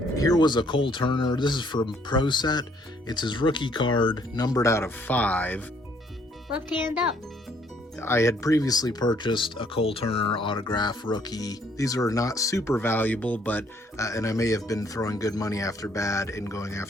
Here was a Cole Turner. This is from Pro Set. It's his rookie card, numbered out of 5. Left hand up. I had previously purchased a Cole Turner autograph rookie. These are not super valuable, but and I may have been throwing good money after bad in going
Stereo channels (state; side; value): normal; both; correlation 0.65